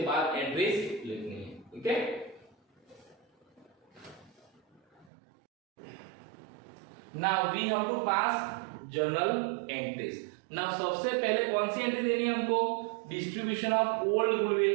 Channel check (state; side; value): drops out; left; at 5.1 s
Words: बाद एंट्रीज लिखनी है ठीक है। Now we have to pass journal entries. Now सबसे पहले कौन सी एंट्री देनी है हमको distribution of old